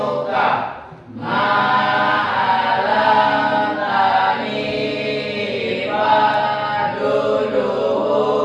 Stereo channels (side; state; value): both; identical; correlation 1.00